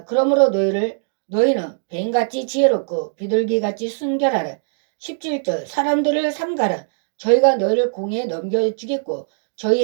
그러므로 너희는 뱀같이 지혜롭고 비둘기같이 순결하라. 17절 사람들을 삼가라. 저희가 너희를 공에 넘겨주겠고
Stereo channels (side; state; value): left; silent; digital silence